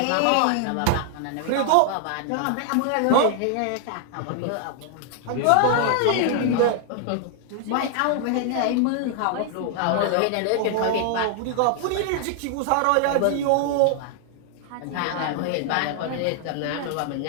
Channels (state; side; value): different; both; correlation 0.00